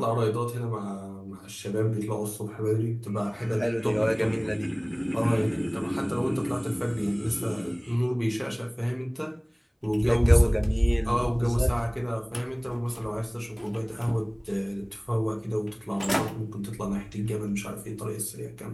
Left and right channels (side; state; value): both; identical; correlation 1.00